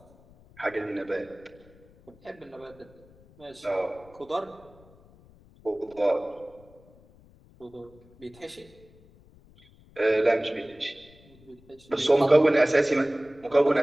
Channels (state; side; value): noise; left; rumble, 26 dB below the sound